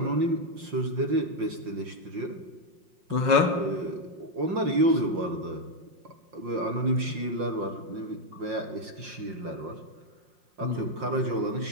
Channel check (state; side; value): late; left; 5.6 ms